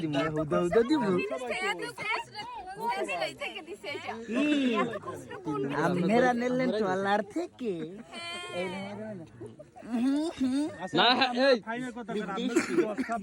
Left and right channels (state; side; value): identical; both; correlation 1.00